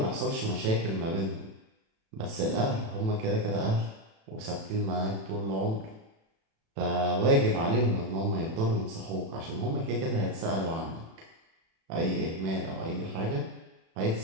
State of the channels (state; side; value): late; left; 36 ms